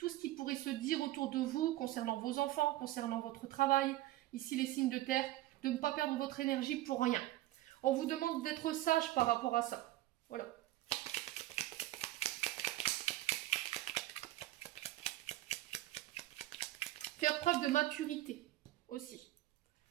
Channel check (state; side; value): quieter; left; 16.1 dB